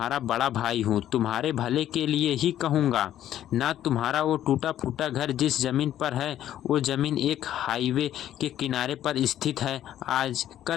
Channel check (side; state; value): right; quieter; 11.8 dB